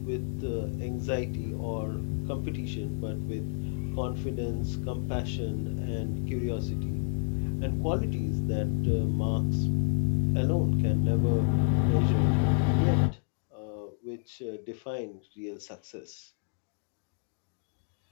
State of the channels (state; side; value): silent; right; 58 dB below the other